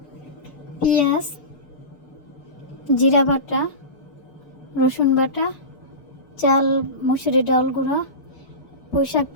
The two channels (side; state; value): right; late; 6.6 ms